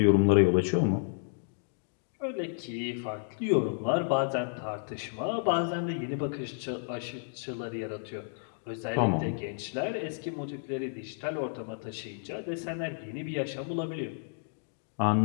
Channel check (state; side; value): silent; right; digital silence